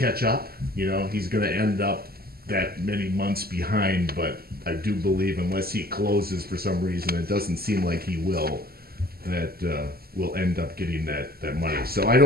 up. He's gonna end up that many months behind. But I do believe, unless he closes for some reason, it doesn't seem like he will, that we'll end up getting that money. So I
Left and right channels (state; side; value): late; left; 0.45 ms